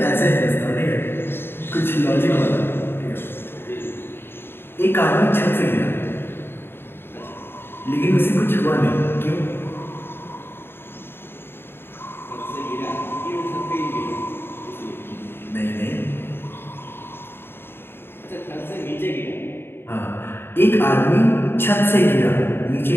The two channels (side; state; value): right; late; 0.11 ms